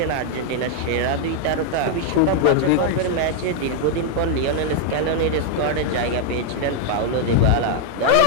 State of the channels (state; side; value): different; both; correlation 0.00